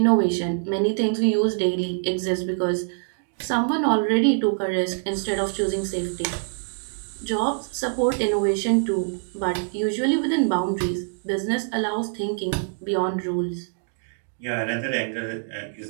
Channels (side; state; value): left; silent; digital silence